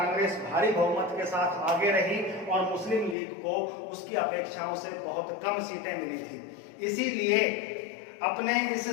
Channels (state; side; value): drops out; right; at 3.2 s